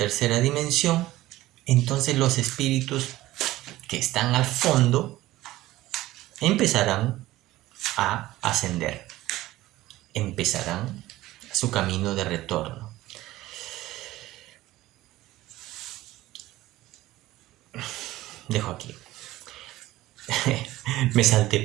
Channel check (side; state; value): left; quieter; 16.6 dB